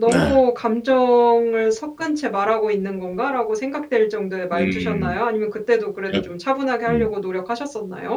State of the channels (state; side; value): identical; both; correlation 1.00